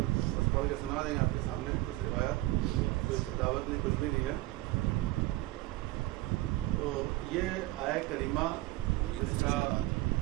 بس پڑھ کے سنا دیں گے آپ کے سامنے. کچھ روایات، کوئی دعوت نہیں، کچھ بھی نہیں ہے. تو یہ آیہ کریمہ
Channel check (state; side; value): quieter; left; 19.0 dB